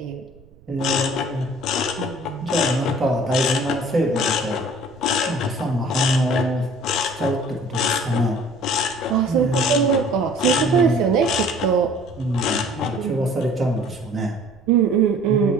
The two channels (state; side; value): noise; right; rumble, 26 dB below the sound